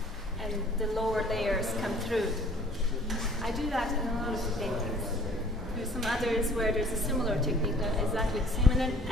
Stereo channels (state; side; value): normal; both; correlation 0.54